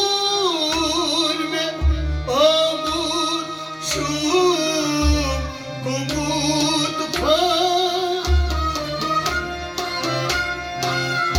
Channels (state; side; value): identical; both; correlation 1.00